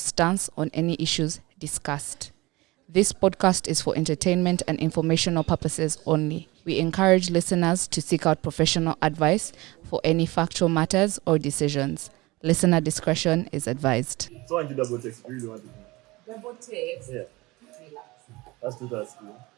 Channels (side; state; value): left; quieter; 21.7 dB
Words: on any issues discussed. This podcast is for entertainment and informational purposes only. We encourage listeners to seek out professional advice for any factual matters or decisions. Listener discretion is advised. So I want you double text. You really want to do. Double text. Yeah. Relax. That's too that's cool.